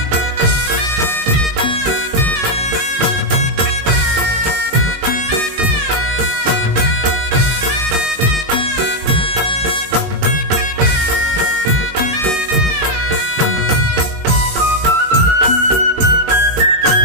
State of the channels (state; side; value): late; left; 18 ms